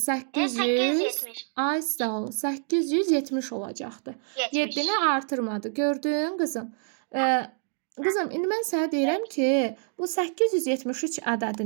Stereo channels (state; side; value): silent; left; digital silence